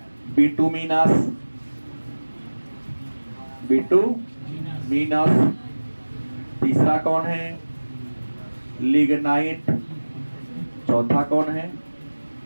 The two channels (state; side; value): inverted; both; correlation -1.00